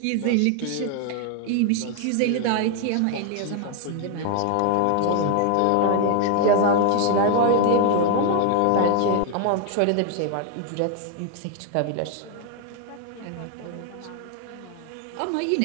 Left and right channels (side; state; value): both; different; correlation 0.00